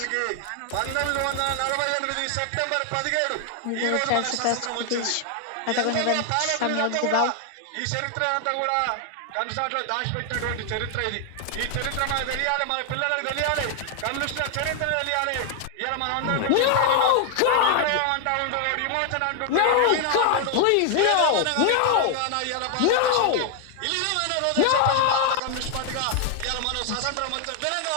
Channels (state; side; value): different; both; correlation 0.00